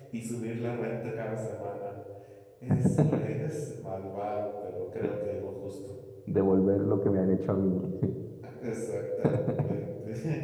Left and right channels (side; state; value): both; identical; correlation 1.00